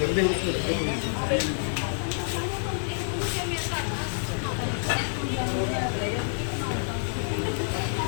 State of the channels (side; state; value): right; silent; 60 dB below the other